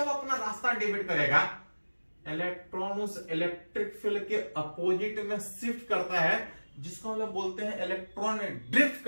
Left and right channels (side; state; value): both; inverted; correlation -1.00